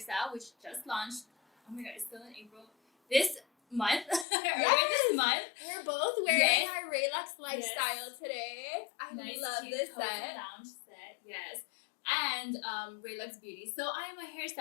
which just launched. Oh my god, it's still in April. This month. This month. We're both wearing our Relax Lifestyle today. I nice love this set. Lounge set. Yes. And Relax Beauty. So I am a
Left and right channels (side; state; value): right; drops out; at 4.2 s